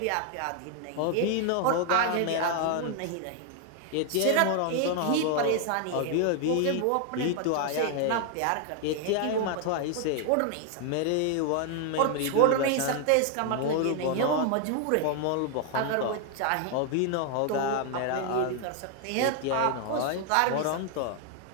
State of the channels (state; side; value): different; both; correlation 0.00